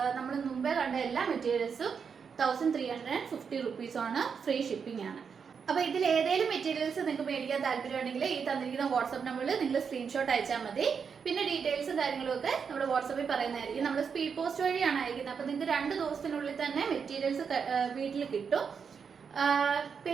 നമ്മൾ മുമ്പേ കണ്ട എല്ലാ മെറ്റീരിയൽസും 1350 റുപ്പീസാണ്. ഫ്രീ ഷിപ്പിംഗ് ആണ്. അപ്പോൾ ഇതിൽ ഏതെങ്കിലും മെറ്റീരിയൽസ് നിങ്ങൾക്ക് മേടിക്കാൻ താല്പര്യമുണ്ടെങ്കിൽ ഈ തന്നിരിക്കുന്ന വാട്സ്ആപ്പ് നമ്പറിൽ നിങ്ങൾ സ്ക്രീൻഷോട്ട് അയച്ചാൽ മതി. പിന്നെ ഡീറ്റെയിൽസും കാര്യങ്ങളും ഒക്കെ നമ്മൾ വാട്സാപ്പിൽ പറയുന്നതായിരിക്കും. നമ്മൾ സ്പീഡ് പോസ്റ്റ് വഴിയാണ് അയക്കുന്നത്. അപ്പോൾ നിങ്ങൾക്ക് 2 ദിവസത്തിനുള്ളിൽ തന്നെ മെറ്റീരിയൽസ് വീട്ടിൽ കിട്ടും.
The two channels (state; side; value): quieter; left; 6.3 dB